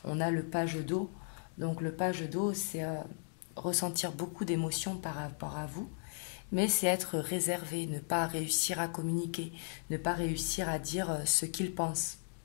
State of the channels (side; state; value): right; silent; digital silence